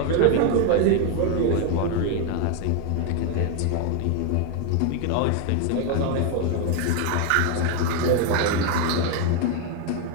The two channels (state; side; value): different; both; correlation 0.01